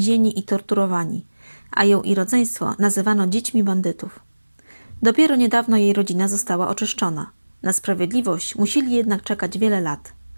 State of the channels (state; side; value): inverted; both; correlation -1.00